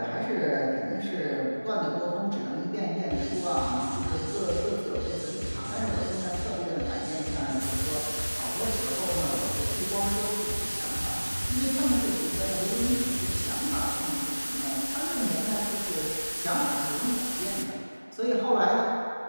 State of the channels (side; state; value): both; inverted; correlation -1.00